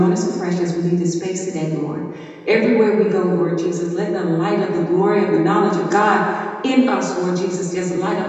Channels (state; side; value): identical; both; correlation 1.00